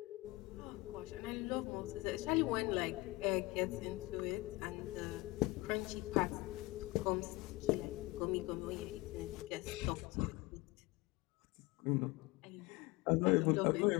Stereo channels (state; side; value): quieter; right; 22.0 dB